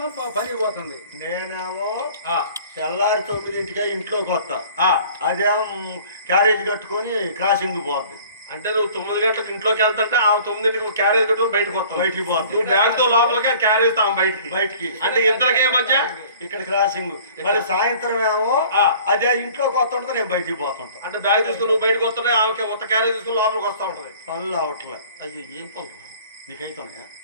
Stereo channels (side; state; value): both; inverted; correlation -0.49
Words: పని పోతుంది. నేనేమో ఆ, తెల్లారి 9ంటికే ఇంట్లోకి వస్తా, ఆ. అదేమో క్యారేజ్ కట్టుకొని క్రాసింగ్ పోద్ది. అంటే నువ్వు 9 గంటలకు ఇంట్లోకి వెళ్తుంటే ఆ 9ంటికి క్యారేజ్ కట్టుకుని బయటకు వస్తావు. బయటికి పోద్ది. నువ్వు బ్యాగ్ తో లోపలికి క్యారేజ్ తావు బయటికి. బయటికి అంటే ఇద్దరికే మధ్య ఇక్కడ క్రాసింగ్. మళ్ళీ సాయంత్రం ఏమో ఆ. అదే ఇంట్లోకి వస్తుంటే నేను బయటికి పోతుంటా. అంటే బ్యాగ్ తీసుకుని నువ్వు బయటకు వస్తుంటే ఆమెకి కొత్త క్యారేజ్ తీసుకుని లోపలికి వస్తా ఉంటది. పనులు అవట్లే. అయ్యో ఏం పనులు నీకైతున్నాయా?